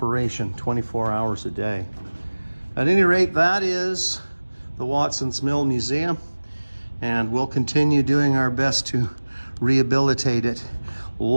24 hours a day. At any rate, that is the Watson's Mill Museum, and we'll continue doing our best to rehabilitate it.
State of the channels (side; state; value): both; inverted; correlation -1.00